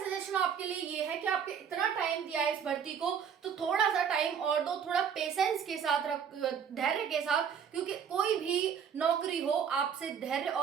आपके लिए ये है कि आपके इतना टाइम दिया है इस भर्ती को, तो थोड़ा सा टाइम और दो, थोड़ा पेशेंस के साथ, धैर्य के साथ, क्योंकि कोई भी नौकरी हो आपसे धैर्य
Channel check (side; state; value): left; quieter; 7.5 dB